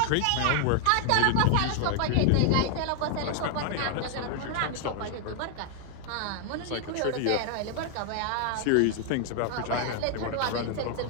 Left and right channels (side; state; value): both; different; correlation 0.00